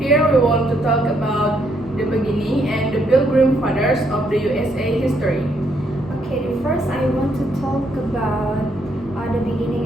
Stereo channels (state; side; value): normal; both; correlation 0.73